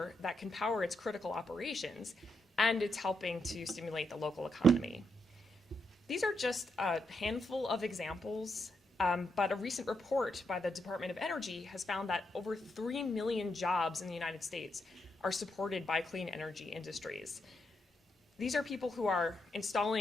that can power its critical operations, and it's helping to stimulate the local economy. These are just a handful of examples, but a recent report by the Department of Energy has found that over 3 million jobs in the United States are supported by clean energy industries. These are people who are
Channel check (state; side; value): normal; both; correlation 0.81